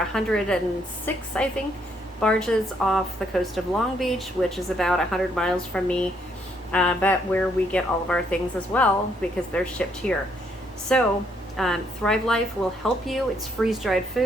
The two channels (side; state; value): both; normal; correlation 0.71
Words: I think, barges off the coast of Long Beach, which is about 100 miles from me, but where we get all of our things as well, because they're shipped here. So Thrive Life will help you. It's freeze-dried